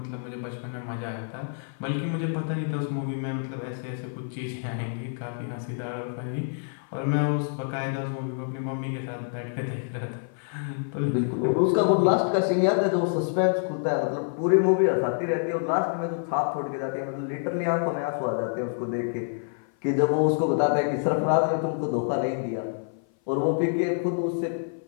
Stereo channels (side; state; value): right; silent; 55 dB below the other